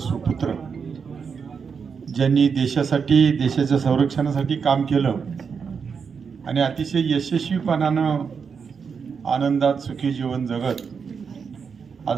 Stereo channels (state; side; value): quieter; left; 6.0 dB